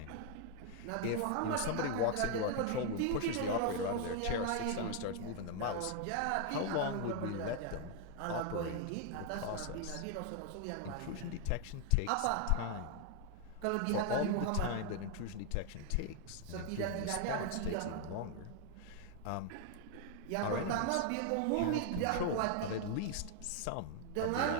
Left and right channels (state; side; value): different; both; correlation 0.00